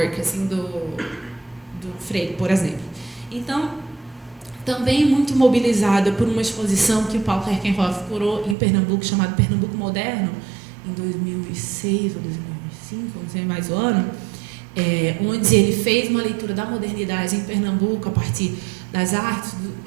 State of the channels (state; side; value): drops out; left; at 8.6 s